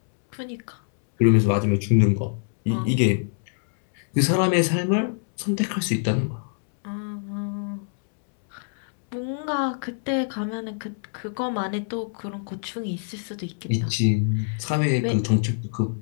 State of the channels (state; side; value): silent; right; 62 dB below the other